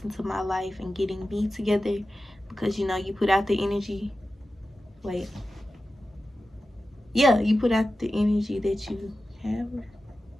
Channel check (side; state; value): both; normal; correlation 0.93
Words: into my life and getting me together, because you put out the energy. You put out the energy that you have.